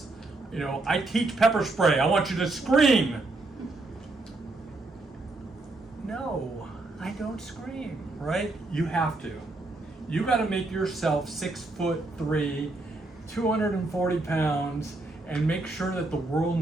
you know, I teach pepper spray. I want you to scream. No, I don't scream, right? You have to. You got to make yourself 6'3", 240 pounds, and make sure that the world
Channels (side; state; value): left; quieter; 3.1 dB